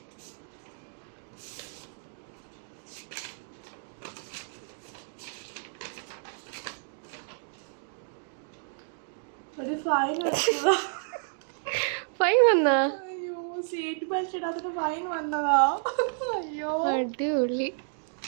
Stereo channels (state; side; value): silent; left; digital silence